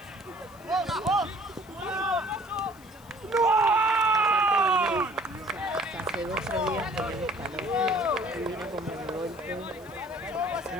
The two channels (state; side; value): noise; left; hiss, 25 dB below the sound